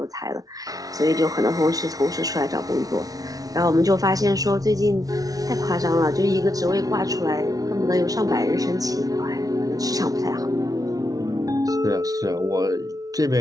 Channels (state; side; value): late; left; 0.18 ms